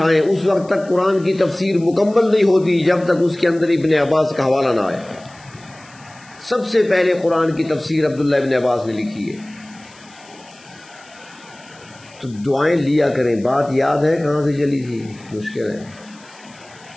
اس وقت تک قرآن کی تفسیر مکمل نہیں ہوتی جب تک اس کے اندر ابن عباس کا حوالہ نہ آئے. سب سے پہلے قرآن کی تفسیر عبداللہ ابن عباس نے لکھی ہے. تو دعائیں لیا کریں. بات یاد ہے کہاں سے چلی تھی؟ مشکل ہے.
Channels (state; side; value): noise; left; hiss, 25 dB below the sound